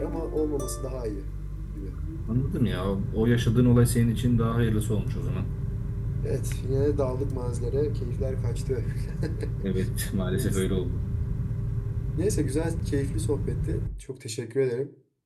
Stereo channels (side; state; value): both; identical; correlation 1.00